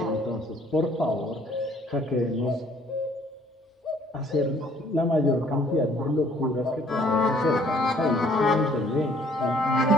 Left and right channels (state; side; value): normal; both; correlation 0.60